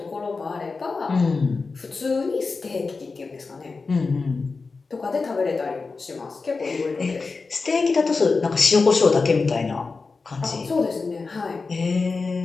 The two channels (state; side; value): quieter; right; 4.2 dB